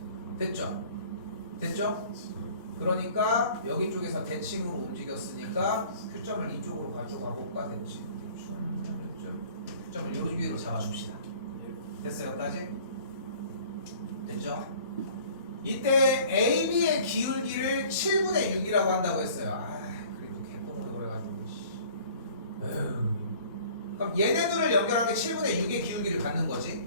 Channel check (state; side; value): inverted; both; correlation -0.50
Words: 됐죠? 됐죠? 그러니까 여기 쪽에서 대칭으로 움직였으니까 Q점을 이쪽으로 가져가 볼까? 대칭 Q점을 여기로 잡아줍시다. 됐어요? 여기까지? 됐죠? 이때 AB의 기울기를 7분의 6이라고 한다고 했어요. 아, 그래도 개똥으로 그래가지고. 에휴. 그럼 얘네들을 연결한 게 7분의 6의 기울기를 갖는